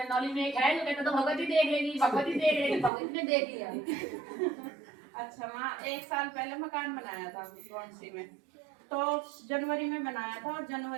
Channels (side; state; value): left; drops out; at 2.9 s